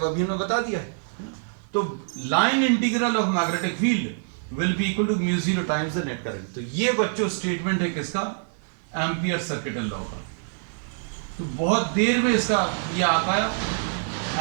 अभी हमने बता दिया है। तो line integral of magnetic field will be equal to mu zero times the net current. तो ये बच्चों स्टेटमेंट है किसका, एम्पियर सर्किटल लॉ का। तो बहुत देर में इसका ये आ पाया,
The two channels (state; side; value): silent; left; 56 dB below the other